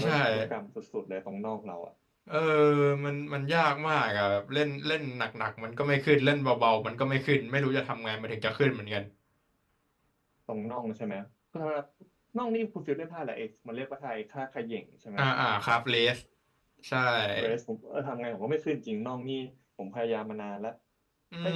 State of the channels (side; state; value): both; identical; correlation 1.00